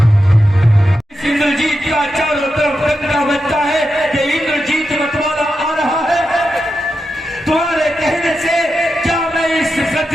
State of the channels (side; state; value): both; normal; correlation 0.89